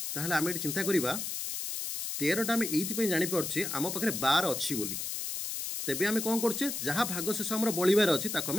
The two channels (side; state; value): left; noise; hiss, 4 dB below the sound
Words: ताहले आम ये चिंता करवा 13टा आम ये जापारे आम पाखे 12 अच्छी बोली तेबे आम कौन करचे जहाँ भागशेष आम बलिबार अच्छी